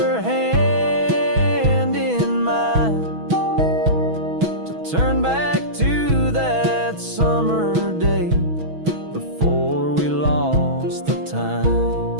hand in mine, to turn back to that summer day before we lost the time.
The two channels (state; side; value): late; left; 6.2 ms